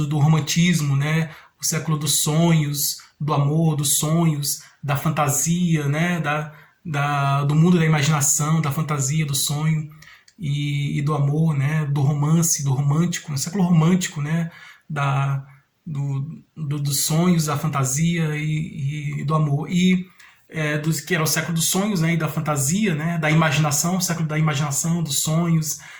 romantismo, né, o século dos sonhos, do amor, dos sonhos, da fantasia, né, do mundo da imaginação, da fantasia, do sonho e do amor, né, do romance, do romântico, o século romântico, né, dos sonhos, da fantasia e do amor. Que era o século dos sonhos, né, e da fantasia, né, da imaginação, o século da imaginação, dos sonhos,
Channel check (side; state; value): both; identical; correlation 1.00